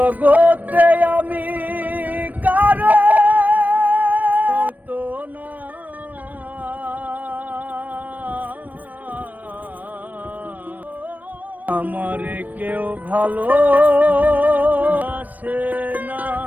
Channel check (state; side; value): late; left; 0.081 ms